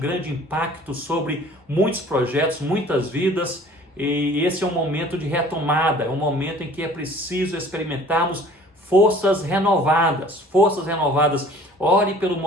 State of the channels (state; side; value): normal; both; correlation 0.50